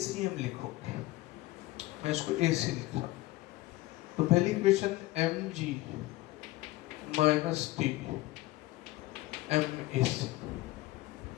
लिखोगे। मैं इसको AC लिख रहा हूँ। तो पहली equation mg minus T MAC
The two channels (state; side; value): quieter; right; 18.3 dB